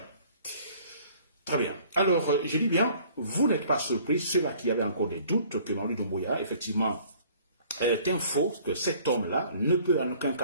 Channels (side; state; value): both; inverted; correlation -0.54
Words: Très bien. Alors, je dis bien, vous n'êtes pas surpris, ceux-là qui avaient encore des doutes que Mamadi Doumbouya, effectivement, est un faux, que cet homme-là ne peut en aucun